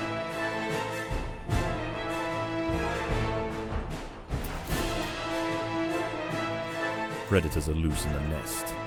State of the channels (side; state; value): both; identical; correlation 1.00